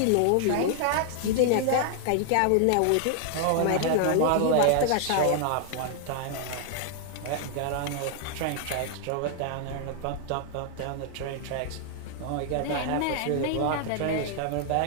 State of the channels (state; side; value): different; both; correlation 0.00